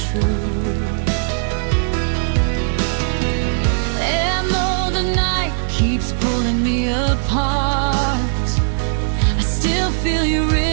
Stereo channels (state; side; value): silent; left; 61 dB below the other